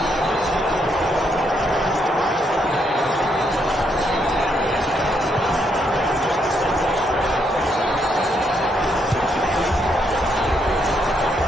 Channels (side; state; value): both; normal; correlation 0.75